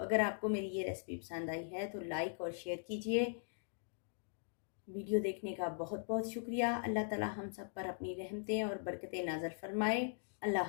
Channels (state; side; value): silent; right; digital silence